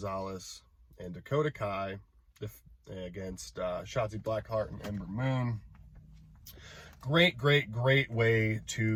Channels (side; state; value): both; identical; correlation 1.00